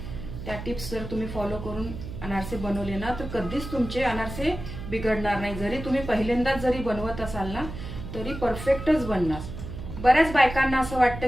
त्या टिप्स जर तुम्ही फॉलो करून अनारसे बनवले ना तर कधीच तुमचे अनारसे बिघडणार नाही. जरी तुम्ही पहिल्यांदाच जरी बनवत असाल ना तरी परफेक्टच बनणार. बऱ्याच बायकांना असं वाटतं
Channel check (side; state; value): right; noise; hum, 9 dB below the sound